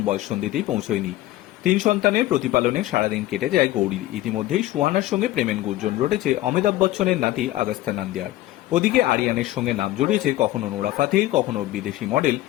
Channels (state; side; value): quieter; right; 15.7 dB